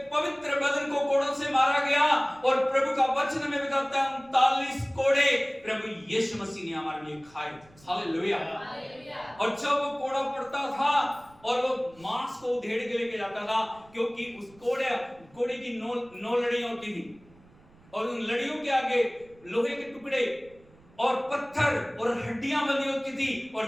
पवित्र बदन को कोड़ों से मारा गया। और प्रभु का वचन में बताता है 39 कोड़े प्रभु यीशु मसीह ने हमारे लिए खाए। हालेलुया। और जब वो कोड़ा पड़ता था और वो मांस को उधेड़ के लेके जाता था, क्योंकि उस कोड़े की नौ लड़ियां होती थी, और उन लड़ियों के आगे लोहे के टुकड़े और पत्थर और हड्डियां बनी होती थी,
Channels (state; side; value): noise; right; rumble, 27 dB below the sound